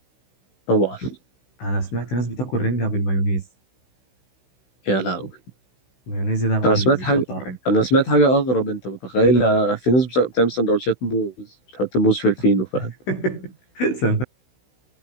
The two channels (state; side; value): late; right; 16 ms